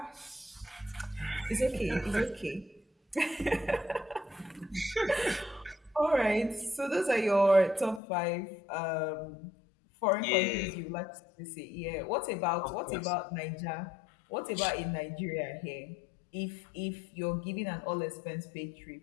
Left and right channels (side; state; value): right; drops out; at 8.0 s